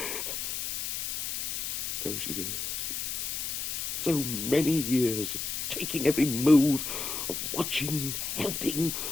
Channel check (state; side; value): noise; left; hiss, 2 dB below the sound